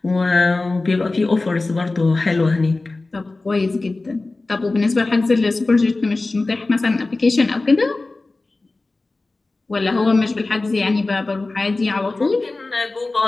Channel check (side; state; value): right; quieter; 3.3 dB